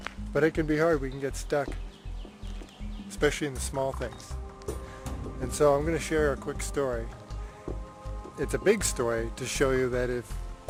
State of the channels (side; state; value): both; identical; correlation 1.00